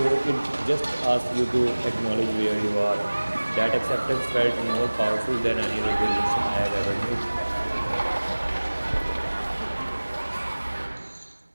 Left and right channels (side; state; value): both; inverted; correlation -1.00